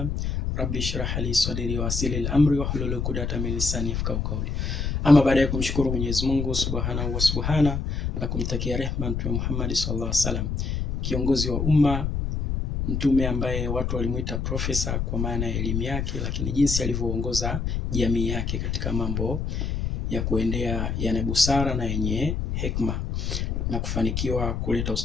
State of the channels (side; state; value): left; noise; rumble, 1 dB below the sound